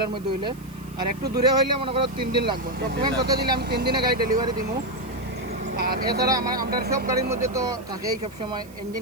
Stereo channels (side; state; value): right; noise; hiss, 25 dB below the sound